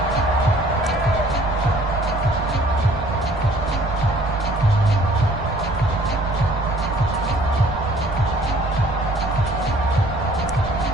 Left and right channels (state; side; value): noise; right; rumble, 12 dB below the sound